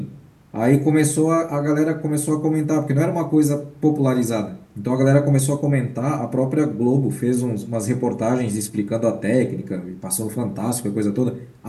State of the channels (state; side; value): identical; both; correlation 1.00